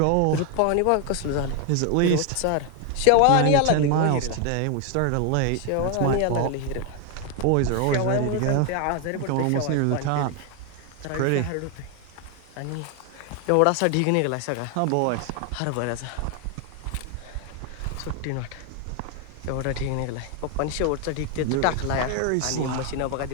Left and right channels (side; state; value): both; different; correlation 0.01